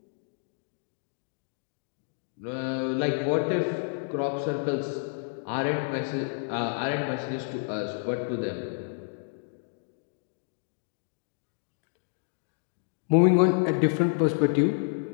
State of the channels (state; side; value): silent; right; digital silence